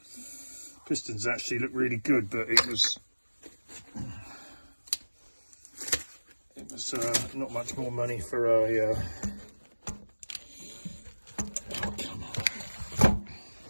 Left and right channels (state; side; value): inverted; both; correlation -1.00